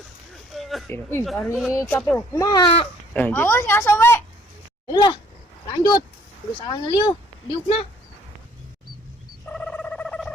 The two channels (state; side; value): normal; both; correlation 0.60